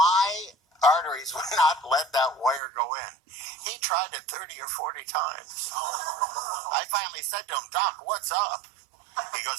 arteries would not let that wire go in. He tried it 30 or 40 times. I finally said to him, Doc, what's up? He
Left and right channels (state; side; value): drops out; left; at 2.6 s